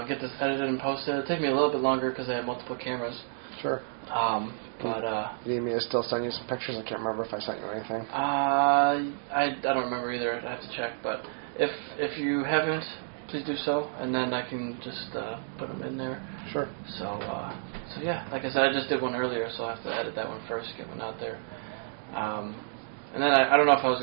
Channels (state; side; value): silent; left; digital silence